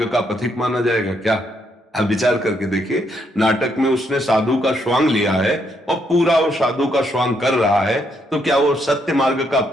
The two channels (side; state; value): both; normal; correlation 0.75